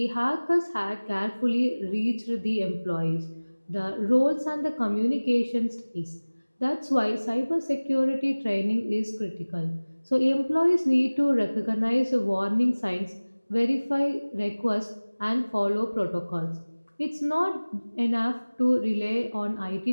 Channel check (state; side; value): inverted; both; correlation -1.00